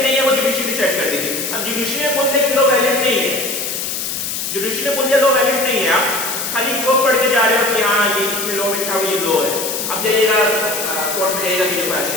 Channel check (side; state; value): left; noise; hiss, 3 dB below the sound